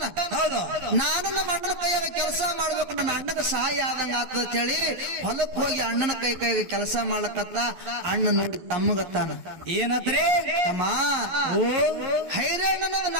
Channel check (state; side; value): late; left; 12 ms